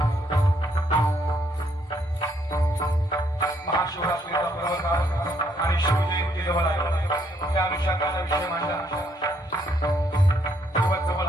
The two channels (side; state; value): both; normal; correlation 0.71